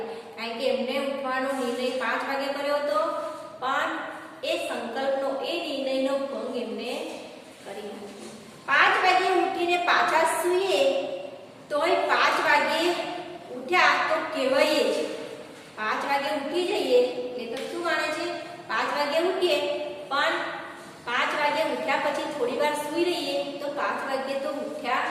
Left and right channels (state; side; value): identical; both; correlation 1.00